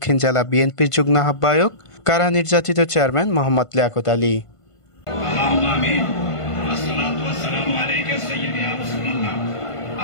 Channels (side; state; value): right; late; 1.5 ms